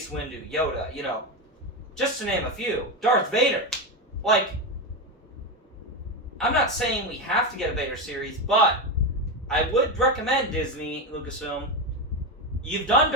Windu, Yoda, just to name a few. Darth Vader. Like, I'm not saying we have to get a Vader series, but I would recommend Disney, Lucasfilm, you've done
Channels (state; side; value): normal; both; correlation 0.14